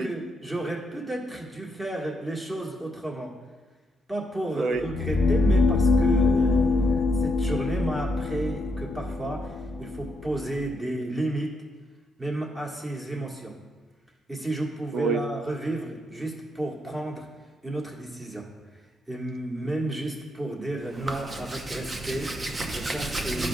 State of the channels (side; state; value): both; normal; correlation 0.78